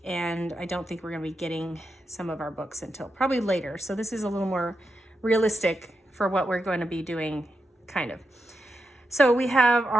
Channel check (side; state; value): both; normal; correlation 0.87